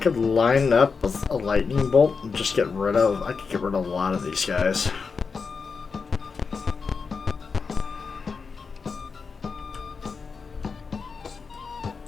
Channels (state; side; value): quieter; right; 5.1 dB